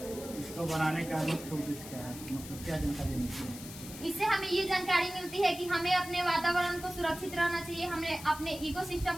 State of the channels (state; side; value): noise; left; hiss, 13 dB below the sound